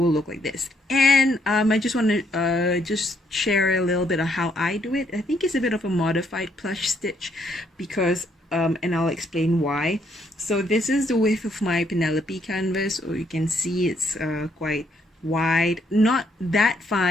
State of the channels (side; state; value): both; normal; correlation 0.71